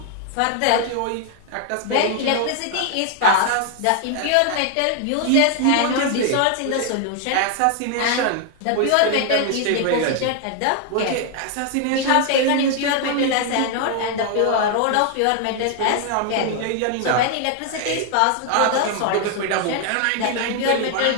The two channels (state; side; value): different; both; correlation 0.00